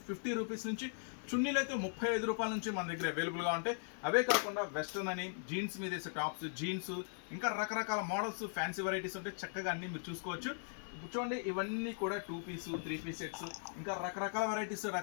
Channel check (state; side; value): silent; right; 52 dB below the other